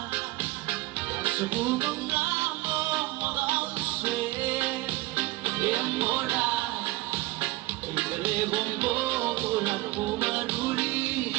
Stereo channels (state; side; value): quieter; left; 20.2 dB